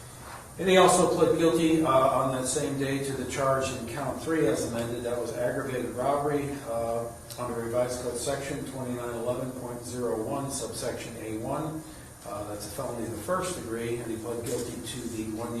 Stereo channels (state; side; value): identical; both; correlation 1.00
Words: And he also pled guilty on that same day to the charge in count 3 as amended. That was aggravated robbery under revised code section 2911.01, subsection A1. That's a felony of the first degree, and he pled guilty to the